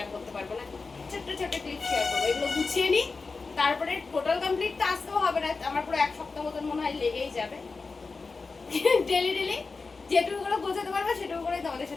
করতে পারবো না, ছোট ছোট ক্লিপ শেয়ার করবো। এগুলো গুছিয়ে নিই, তারপরে টোটাল কমপ্লিট তো আসতেও হবে না। আমার পুরো 1 সপ্তাহ মতন মনে হয় লেগেই যাবে। ডেলি ডেলি যেটুকু করে গোছাতে পারবো সেটুকু করেই তোমাদের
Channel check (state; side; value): quieter; right; 4.2 dB